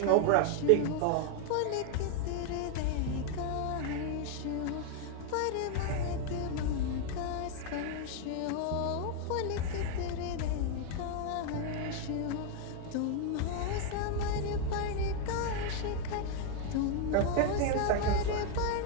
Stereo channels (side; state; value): both; different; correlation 0.01